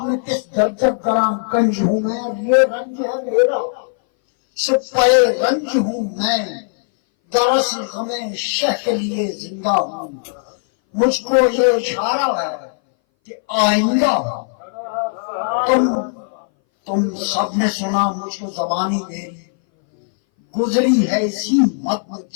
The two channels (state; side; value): silent; right; 61 dB below the other